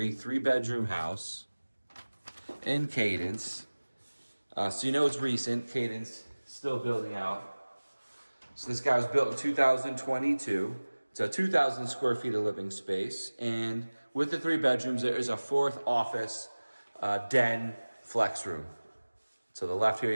3-bedroom house in Cadence. So you know it's recent. Cadence still building out. So this guy was built in 2022. It's a 2,000 square feet of living space. And with the 3 bedrooms, there is a 4th office, den, flex room. To the left here,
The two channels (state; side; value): inverted; both; correlation -1.00